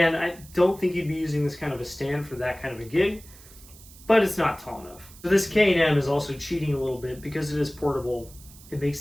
I don't think you'd be using this kind of a stand for that kind of a gig, but it's not tall enough. So this K&M is also cheating a little bit because it is portable. It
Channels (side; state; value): right; noise; hiss, 21 dB below the sound